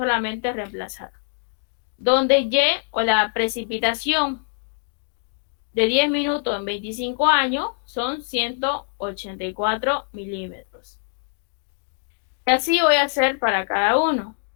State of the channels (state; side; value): silent; right; digital silence